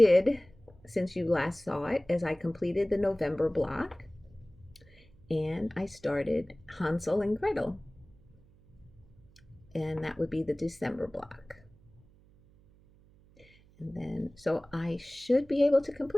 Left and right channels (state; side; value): noise; right; hum, 28 dB below the sound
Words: since you last saw it is I completed the November block, and I started Hansel and Gretel, and that would be the December block. And then, so I should be able to